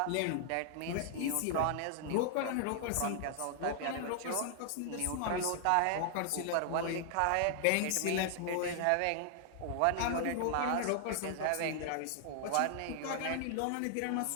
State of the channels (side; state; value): both; different; correlation 0.00